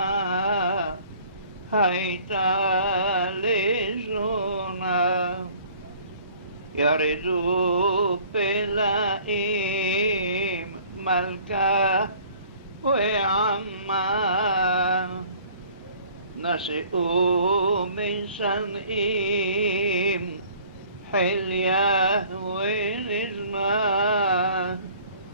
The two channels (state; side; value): inverted; both; correlation -0.53